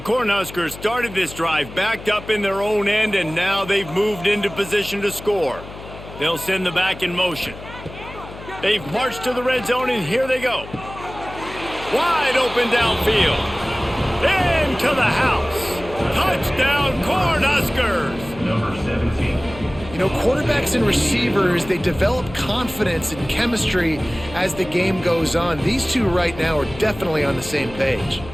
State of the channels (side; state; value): left; noise; hum, 14 dB below the sound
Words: started this drive backed up in their own end, and now they've moved into position to score. They'll send the back in motion. They've marched to the red zone, and here they go. Wide open downfield. Into the house. Touchdown, Cornhuskers. Number 17. You know, quarterbacks and receivers, they develop confidence and chemistry as the game goes on. These two right now are definitely on the same page.